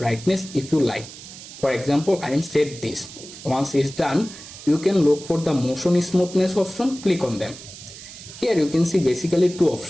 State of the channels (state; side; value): noise; right; hiss, 15 dB below the sound